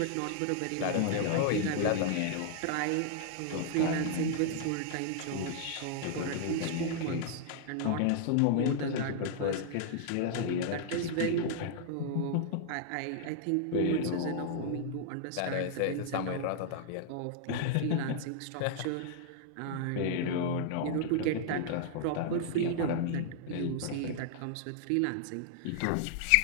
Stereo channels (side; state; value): both; different; correlation -0.01